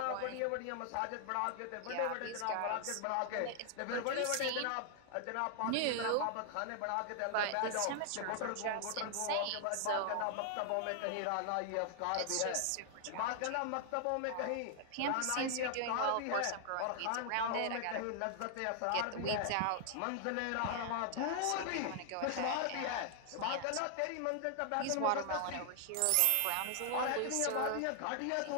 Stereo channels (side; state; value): both; different; correlation 0.00